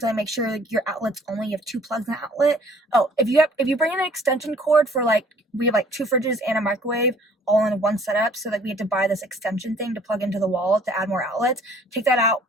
make sure like, your outlets only have 2 plugs in the outlet. Oh, if you bring in an extension cord for like, we have like 2 fridges and a microwave all in one setup, so that we had to buy this extension thing to plug into the wall to add more outlets. Take that out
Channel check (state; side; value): normal; both; correlation 0.56